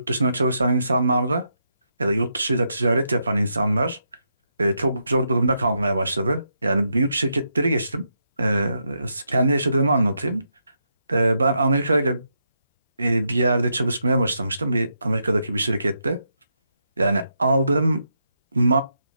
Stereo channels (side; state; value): both; inverted; correlation -0.81